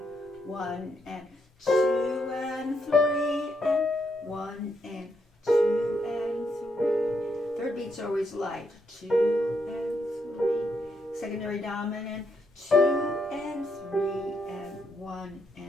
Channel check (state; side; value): normal; both; correlation 0.78